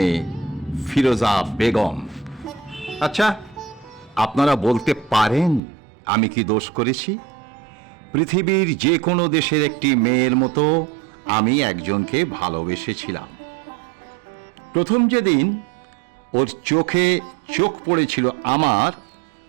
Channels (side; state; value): left; drops out; at 5.6 s